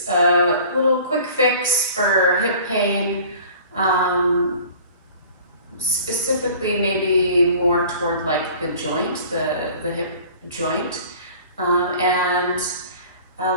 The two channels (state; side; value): inverted; both; correlation -0.46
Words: a little quick fix for hip pain, specifically maybe more toward like the joint, the hip joint, and a